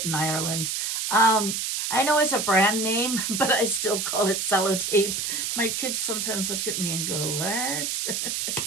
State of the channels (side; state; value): right; noise; hiss, 1 dB below the sound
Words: in Ireland. I know it's a brand name, but I still call it sellotape. My kids sometimes look at me and go, what?